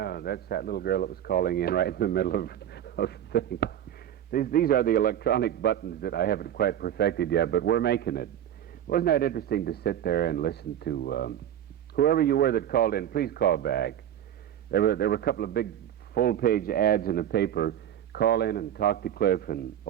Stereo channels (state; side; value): quieter; left; 10.7 dB